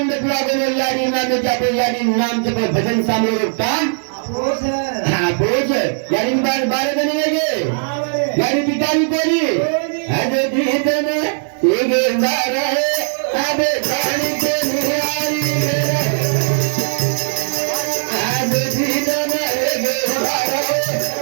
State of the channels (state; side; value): silent; left; digital silence